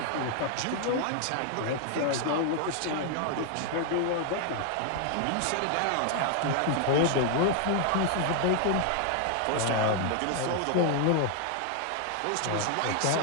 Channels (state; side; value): different; both; correlation 0.00